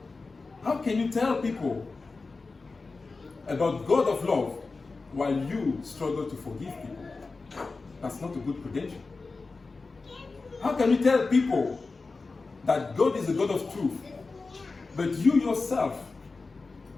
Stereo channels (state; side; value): quieter; right; 3.9 dB